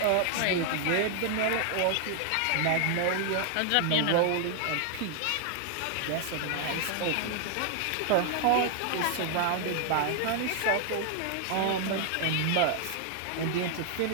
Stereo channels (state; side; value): different; both; correlation 0.00